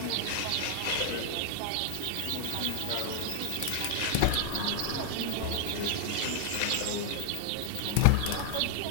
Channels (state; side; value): different; both; correlation 0.00